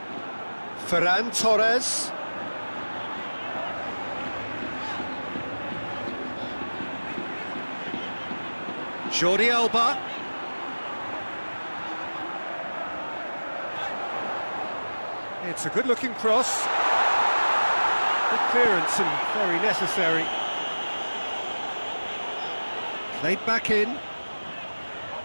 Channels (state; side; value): inverted; both; correlation -1.00